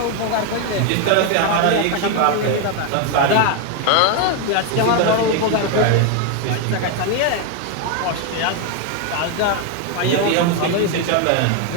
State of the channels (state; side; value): different; both; correlation 0.01